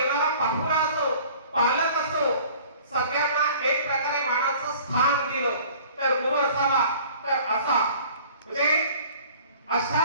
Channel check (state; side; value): inverted; both; correlation -0.49